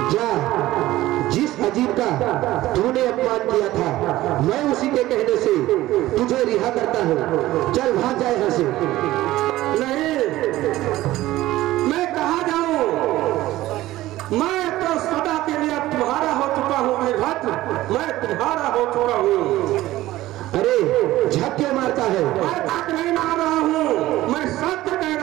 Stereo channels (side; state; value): left; quieter; 16.1 dB